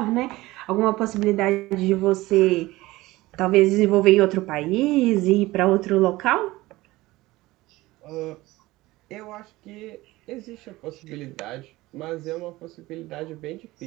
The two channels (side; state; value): left; quieter; 18.9 dB